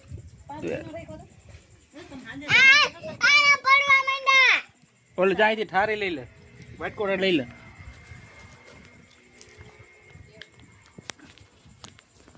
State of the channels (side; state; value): both; identical; correlation 1.00